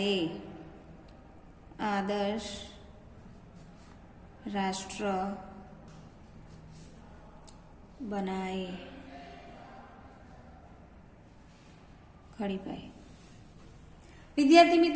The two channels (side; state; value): both; identical; correlation 1.00